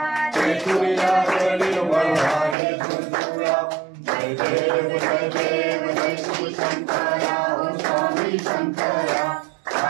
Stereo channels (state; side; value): drops out; left; at 2.6 s